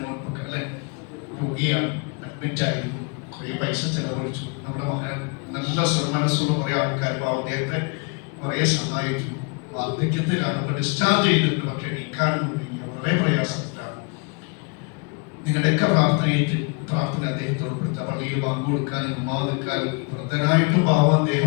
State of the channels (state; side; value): quieter; right; 33.2 dB